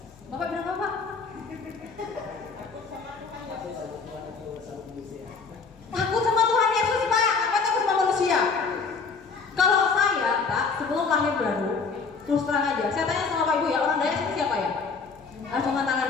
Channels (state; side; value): quieter; right; 4.9 dB